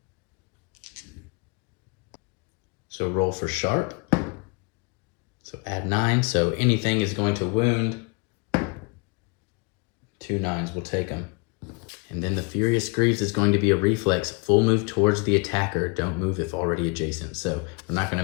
So roll for sharp. So add 9. So anything is going to wound. 2 9s will take them. And then the Furious Greaves is going to be a reflex. Full move towards the attacker. Don't move if already adjacent. So we're not going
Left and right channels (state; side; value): quieter; right; 31.9 dB